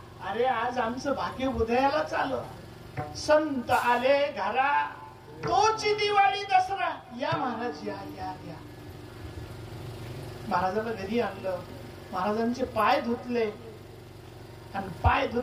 अरे आज आमचं भाग्य उदयालाच आलं. संत आले घरा, तोची दिवाळी दसरा. या महाराज या या या. महाराजांना घरी आणलं. महाराजांचे पाय धुतले आणि पाय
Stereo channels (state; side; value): identical; both; correlation 1.00